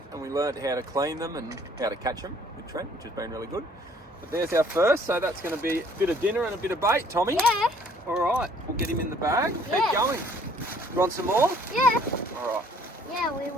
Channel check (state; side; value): normal; both; correlation 0.59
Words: and we learned how to clean them and how to catch them with Trent, which has been really good. But there's our first, so that's going to be a bit of dinner and a bit of bait, Tommy. Yeah. All right, we'll get him in the bag. Yeah. Keep going. You want some more? Yeah. All right. Yeah, we